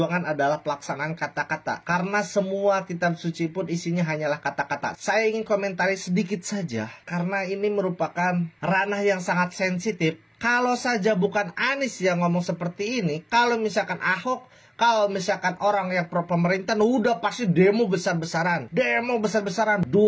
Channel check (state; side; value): identical; both; correlation 1.00